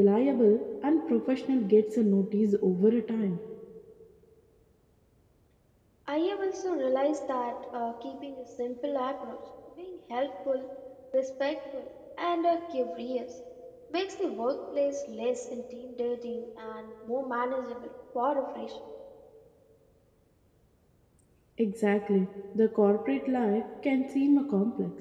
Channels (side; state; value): both; identical; correlation 1.00